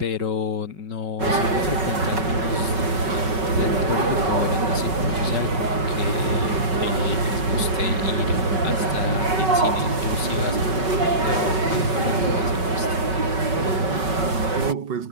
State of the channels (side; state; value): left; late; 5.3 ms